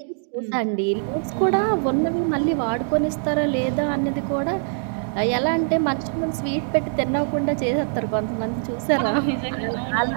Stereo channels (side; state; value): left; silent; digital silence